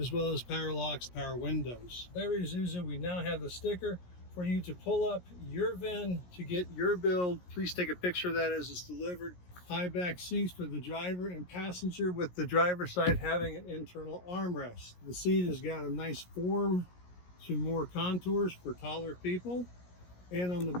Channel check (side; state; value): right; late; 17 ms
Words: well as power locks, power windows. Very Isuzu, we now have the sticker for you to pull up your VIN to get your build. Please take a picture of that as it's delivered. High back seats for the driver and passenger, with the driver's side having an internal armrest. The seat has got a nice form to more contours for taller people. And on the